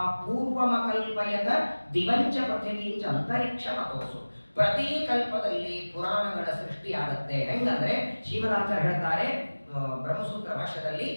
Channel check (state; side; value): inverted; both; correlation -1.00